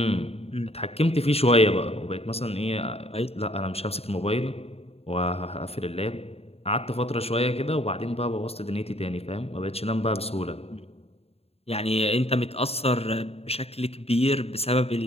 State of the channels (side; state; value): right; late; 0.29 ms